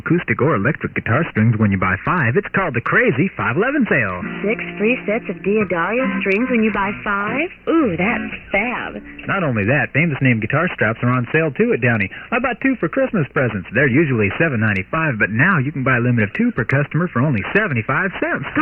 or electric guitar strings when you buy 5. It's called the Crazy 511 sale. 6 free sets of Diodario strings when you buy 5? Ooh, that's fab. Not only that, famous name guitar straps are on sale, too, at Downey. I bought 2 for Christmas presents. They're usually $7.95, but now you can buy a limit of 2 per customer for only 75 cents.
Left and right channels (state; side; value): identical; both; correlation 1.00